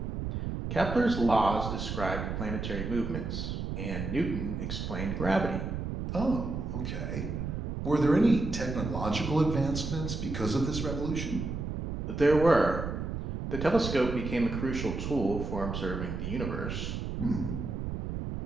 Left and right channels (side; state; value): right; noise; rumble, 4 dB below the sound